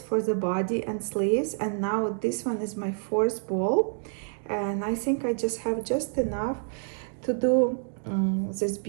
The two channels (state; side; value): silent; left; digital silence